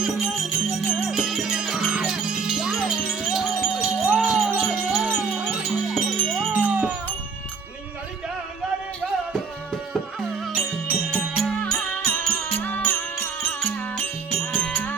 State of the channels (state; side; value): quieter; left; 5.2 dB